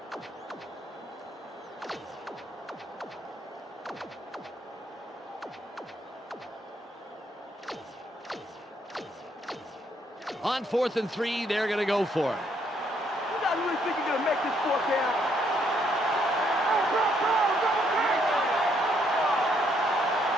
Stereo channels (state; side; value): normal; both; correlation 0.71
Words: On 4th and 3, they're going to go for it. You guys really think you're going to make this 4th down?